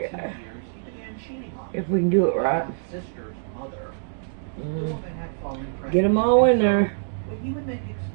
If we can do it right. Get them all in there.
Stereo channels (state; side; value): silent; left; digital silence